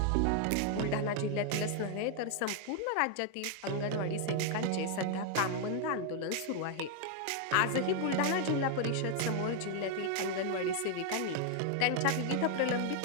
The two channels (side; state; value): both; different; correlation 0.00